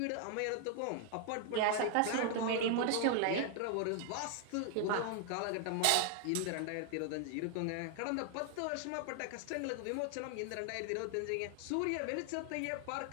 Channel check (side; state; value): both; different; correlation 0.00